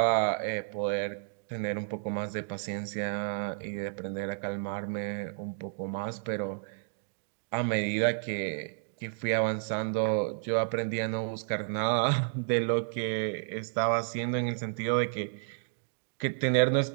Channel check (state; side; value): silent; left; digital silence